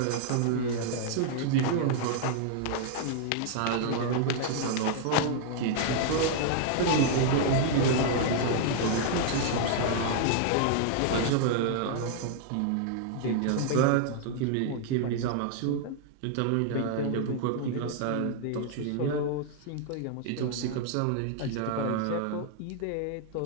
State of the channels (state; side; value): different; both; correlation -0.01